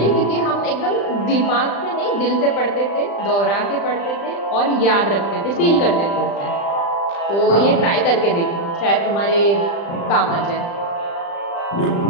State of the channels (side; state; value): right; late; 35 ms